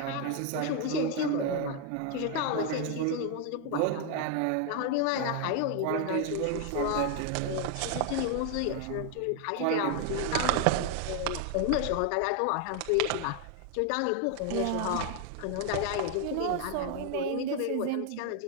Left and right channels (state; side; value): different; both; correlation 0.01